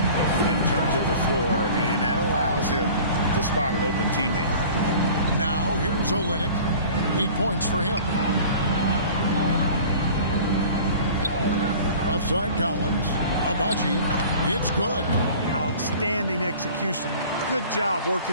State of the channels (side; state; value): both; inverted; correlation -0.44